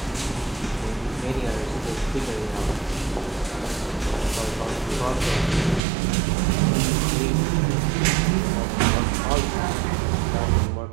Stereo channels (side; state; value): left; drops out; at 5.8 s